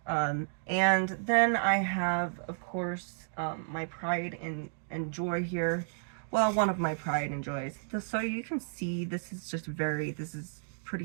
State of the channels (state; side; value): silent; left; digital silence